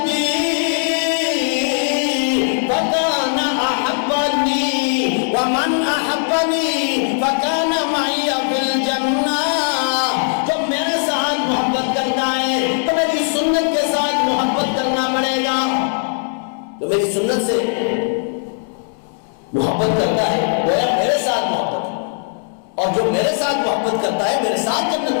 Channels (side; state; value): right; silent; 60 dB below the other